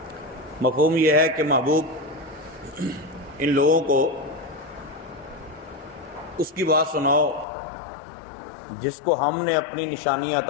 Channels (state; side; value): drops out; right; at 7.5 s